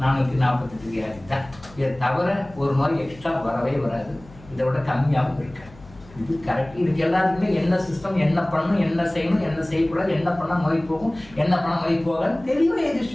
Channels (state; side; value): noise; left; hum, 22 dB below the sound